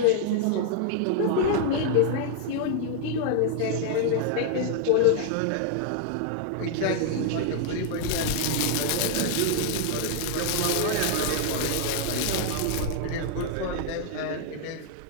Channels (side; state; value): both; different; correlation 0.00